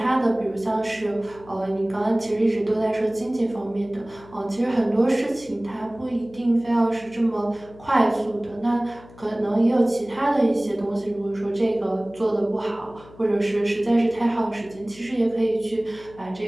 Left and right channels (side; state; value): left; noise; hum, 22 dB below the sound